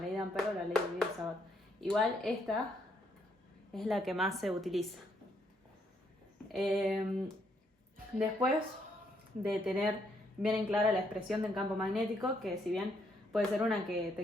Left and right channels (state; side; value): normal; both; correlation 0.73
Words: ley de Ampère o la ley de Sabbat. Igual esta es la que más se utiliza. Eh, Después de tener bien en clara la expresión del campo magnético, que si bien puede ser una que